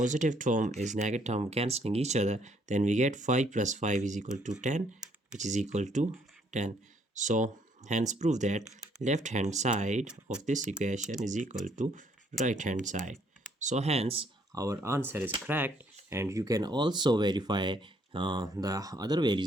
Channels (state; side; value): normal; both; correlation 0.67